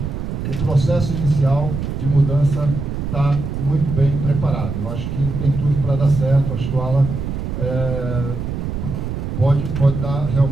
o processo inicial de mudança está muito bem preparado. Eu acho que tem tudo para dar certo. Acho que o Alan pode dar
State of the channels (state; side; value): noise; right; rumble, 4 dB below the sound